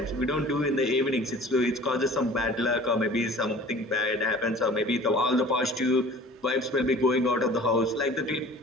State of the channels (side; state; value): both; normal; correlation 0.45